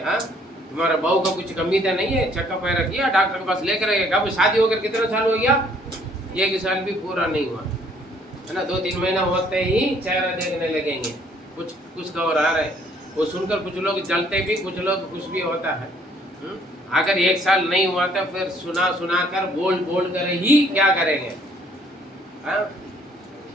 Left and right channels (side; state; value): both; normal; correlation 0.62